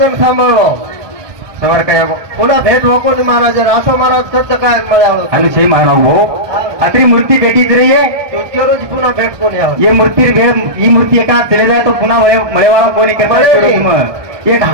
सांभाळलो सवार काय पुन्हा भेट नको महाराज असं महाराज करतं काय मिळालं अनुशय महाराज भाऊ अत्री मूर्ती भेटीच रही है तुझ्या रोज पुन्हा भेट कोणी ये मूर्ती ही मूर्ती एका चले जाए तो पुन्हा मळेवाला कोणी करता एक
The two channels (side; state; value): left; late; 1.2 ms